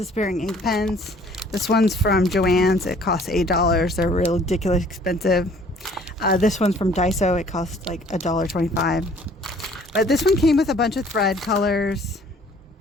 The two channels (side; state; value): both; normal; correlation 0.56